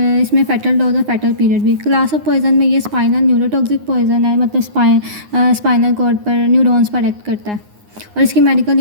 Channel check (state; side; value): late; left; 9.6 ms